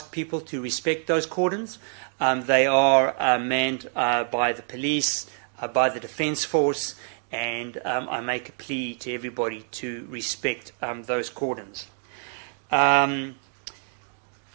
people to respect those cordons. They are manned by the police, by the Defence Force, and I make a plea to everybody to respect those cordons.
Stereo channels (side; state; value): left; silent; 59 dB below the other